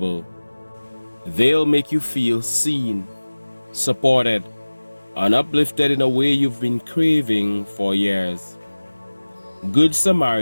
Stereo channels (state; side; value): inverted; both; correlation -1.00